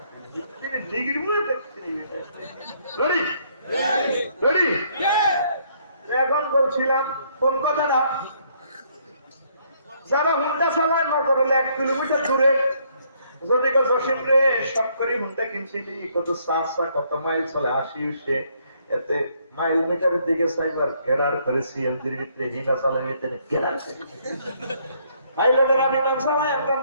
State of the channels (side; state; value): both; inverted; correlation -0.68